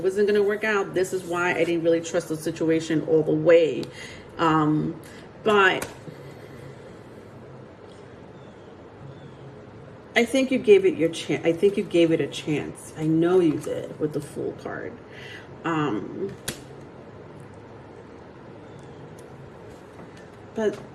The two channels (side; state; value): both; identical; correlation 1.00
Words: wasn't going to work out. This is why I didn't really trust the situation all the way. But I think you gave it your chance. I think you gave it a chance. I know you did with the Fool card. But